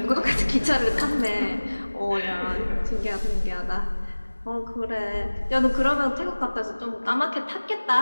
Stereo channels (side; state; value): both; inverted; correlation -1.00